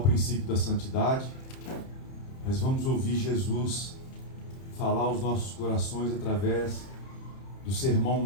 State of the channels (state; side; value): late; right; 31 ms